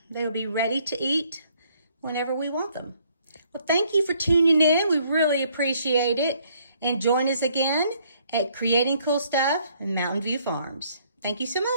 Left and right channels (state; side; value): inverted; both; correlation -0.66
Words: they will be ready to eat whenever we want them. Well, thank you for tuning in. We really appreciate it. And join us again at Creating Cool Stuff in Mountain View Farms. Thank you so